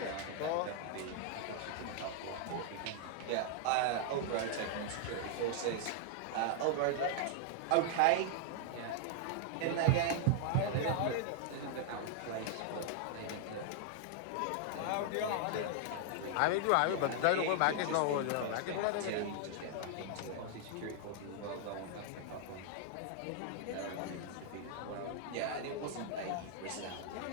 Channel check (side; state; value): both; different; correlation 0.00